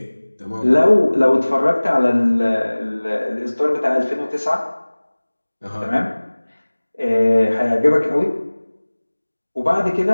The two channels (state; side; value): inverted; both; correlation -1.00